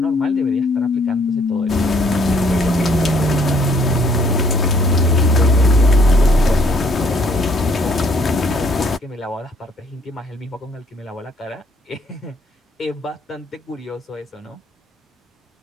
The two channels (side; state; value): both; normal; correlation 0.63